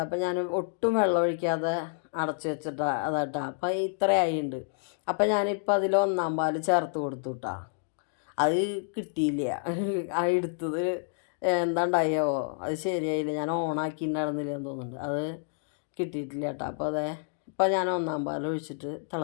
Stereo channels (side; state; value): right; silent; digital silence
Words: അപ്പോൾ ഞാൻ ഒട്ടും വെള്ളം ഒഴിക്കാതെ അടച്ച് വെച്ചിട്ടാ അതാട്ടാ. അപ്പോൾ ഇത്രയായിട്ടുണ്ട്. അപ്പോൾ ഞാനിപ്പോൾ അതിൽ 1-ാം പാൽ ചേർത്ത് കൊടുത്തു കേട്ടോ. അത് കിട്ടിയില്ല, ആ എടുത്തത് എന്താണ്ടായോ അത് ശരിയായില്ല, ഞാൻ ഓണാക്കിയിട്ടുണ്ടായിരുന്നില്ല എന്ന് തോന്നുന്നുണ്ട്, അത് കിട്ടിയിട്ടില്ല കേട്ടോ. അപ്പോൾ ഇപ്പോൾ ഞാൻ 1-ാം പാൽ ഒഴിച്ചിട്ട്